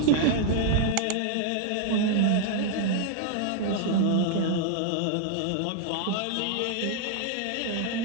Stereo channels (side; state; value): both; different; correlation -0.01